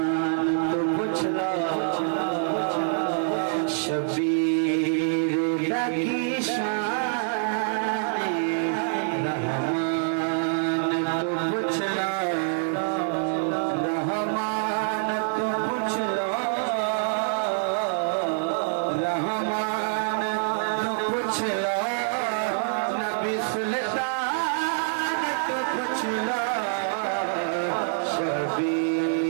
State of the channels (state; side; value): silent; left; 61 dB below the other